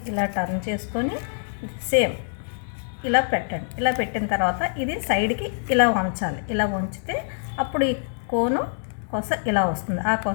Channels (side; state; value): right; silent; digital silence